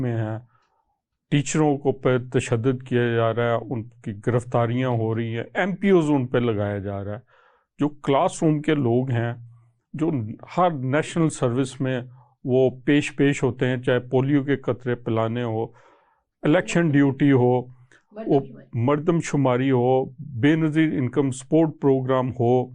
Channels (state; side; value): identical; both; correlation 1.00